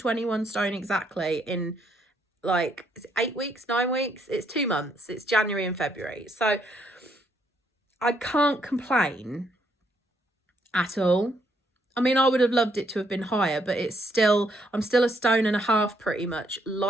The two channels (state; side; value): normal; both; correlation 0.72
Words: stone exactly in like 8 weeks, 9 weeks. It's 2 months. It's January and February. So I can't complain at all. I mean, I would have loved it to have been higher, but I'm still 1.5 stone pretty much